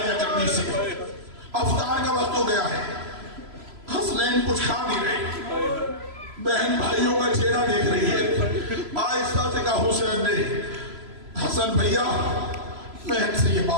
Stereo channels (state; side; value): late; left; 3.0 ms